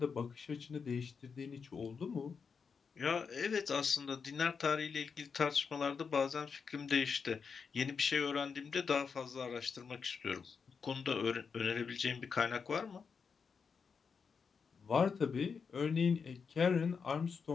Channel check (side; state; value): right; quieter; 5.8 dB